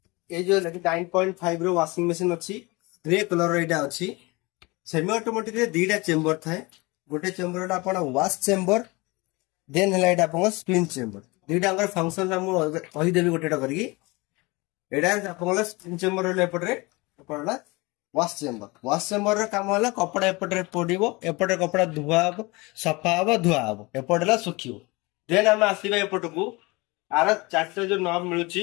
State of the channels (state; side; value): quieter; right; 24.7 dB